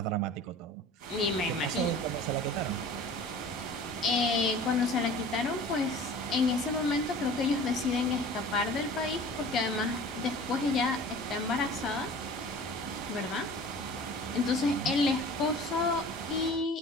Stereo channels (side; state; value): both; normal; correlation 0.43